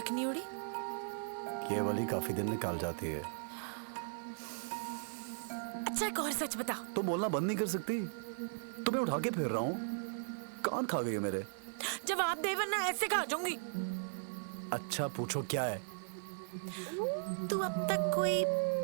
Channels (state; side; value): silent; left; digital silence